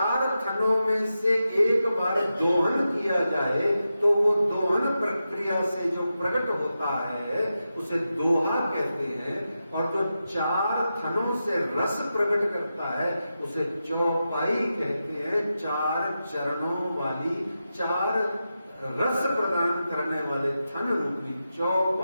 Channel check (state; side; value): inverted; both; correlation -0.90